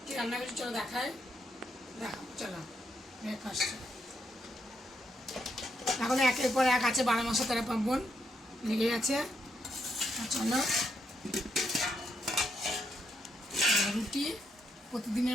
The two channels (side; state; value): both; normal; correlation 0.79